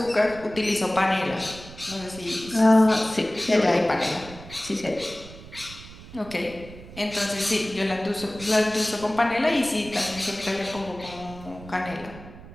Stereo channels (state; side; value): noise; right; rumble, 16 dB below the sound